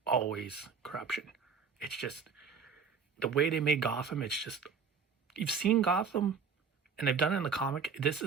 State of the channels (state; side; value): quieter; left; 5.7 dB